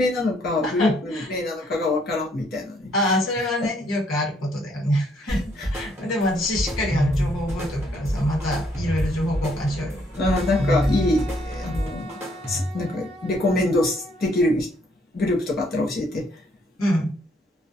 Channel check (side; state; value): both; normal; correlation 0.69